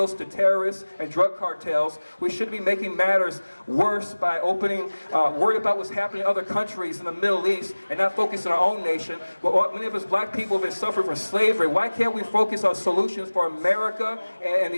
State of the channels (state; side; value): inverted; both; correlation -1.00